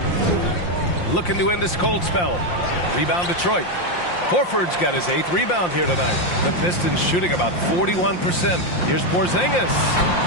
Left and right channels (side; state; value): right; late; 5.7 ms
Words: Looking to end this cold spell. Rebound Detroit. Horford's got his 8th rebound here tonight. The Pistons shooting about 41%. Here's Porzingis.